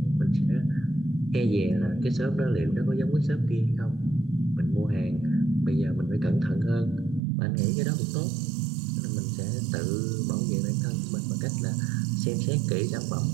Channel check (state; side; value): drops out; left; at 7.2 s